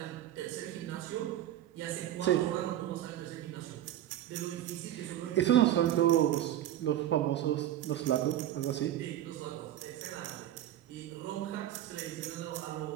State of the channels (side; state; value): left; quieter; 12.4 dB